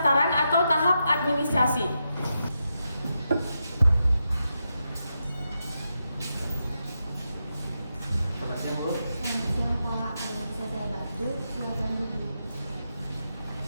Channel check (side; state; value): both; inverted; correlation -0.86